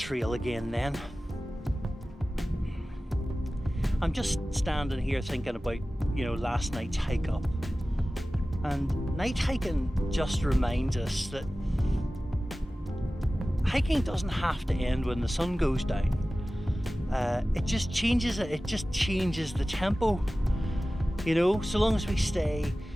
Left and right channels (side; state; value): both; normal; correlation 0.96